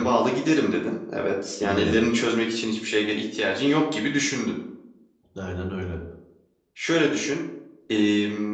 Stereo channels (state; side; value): identical; both; correlation 1.00